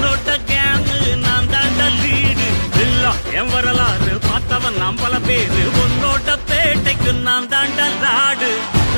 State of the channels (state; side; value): inverted; both; correlation -1.00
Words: கேங்கு நான் தாண்டா லீடு. எல்லாம் என் வரலாறு பார்த்தவன் நாம் பல பேரு உன்னோட்ட பேட்டைக்கு நான் தாண்டா லாடு.